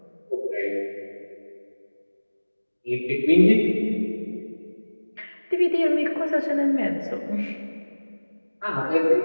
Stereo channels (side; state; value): both; inverted; correlation -1.00